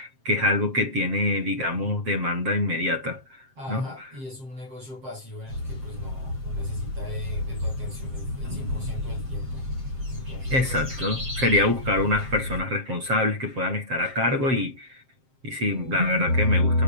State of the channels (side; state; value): left; late; 7.6 ms